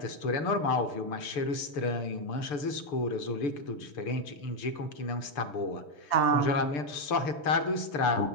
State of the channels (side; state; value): right; late; 6.8 ms